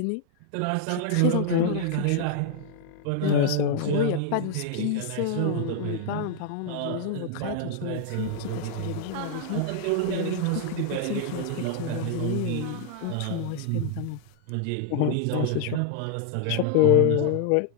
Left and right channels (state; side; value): different; both; correlation 0.00